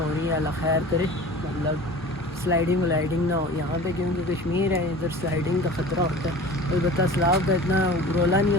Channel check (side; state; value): both; normal; correlation 0.39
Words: رہی ہیں، اللہ خیر کرے. مطلب سلائڈنگ ولائڈنگ نہ ہو یہاں پہ، کیونکہ کشمیر ہے، ادھر سلائڈنگ کا خطرہ ہوتا ہے. البتہ سیلاب کا اتنا رولا نہیں